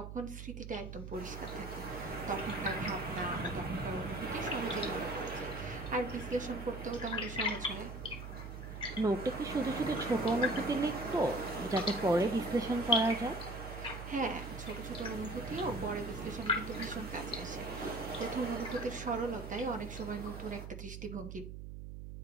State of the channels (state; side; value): noise; right; hum, 9 dB below the sound